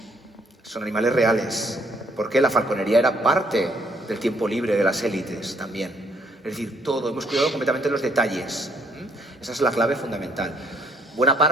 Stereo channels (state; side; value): normal; both; correlation 0.67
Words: animales reales, porque la falconería era parte del tiempo libre de las élites también. Es decir, todo, hemos cuidado completamente los detalles. Esa es la clave fundamental. Buena